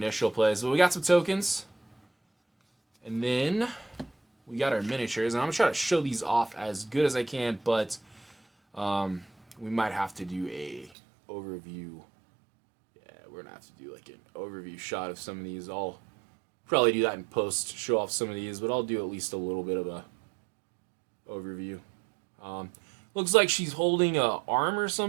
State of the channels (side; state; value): left; drops out; at 10.9 s